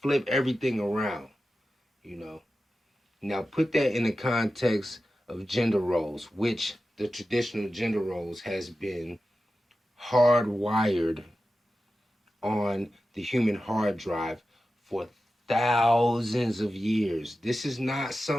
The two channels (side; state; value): both; normal; correlation 0.93